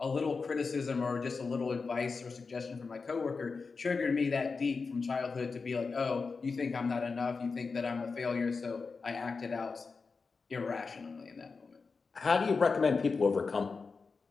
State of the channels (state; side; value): quieter; right; 4.6 dB